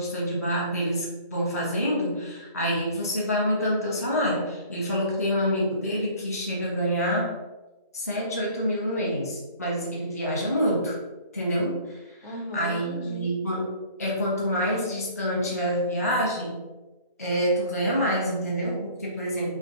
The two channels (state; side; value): inverted; both; correlation -0.50